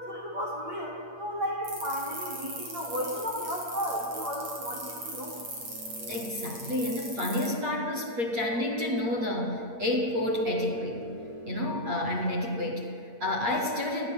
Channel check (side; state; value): left; late; 8.6 ms